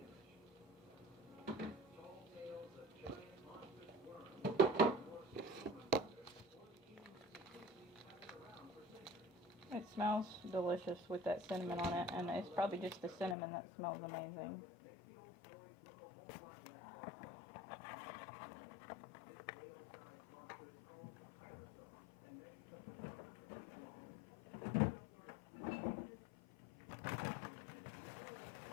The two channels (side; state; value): right; drops out; at 13.4 s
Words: It smells delicious with that cinnamon on it, and it's probably just the cinnamon that smells amazing.